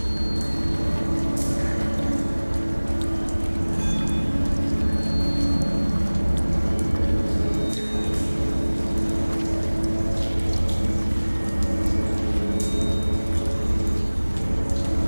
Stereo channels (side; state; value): both; inverted; correlation -1.00